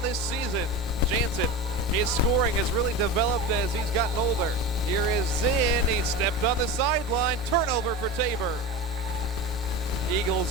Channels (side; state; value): both; normal; correlation 0.27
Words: this season. Jansen, his scoring has really developed as he's gotten older. Here is Zinn. He stepped on the sideline. Turnover for Tabor. Eagles